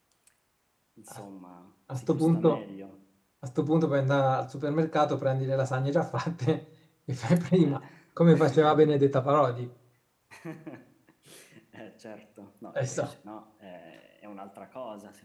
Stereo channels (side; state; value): both; identical; correlation 1.00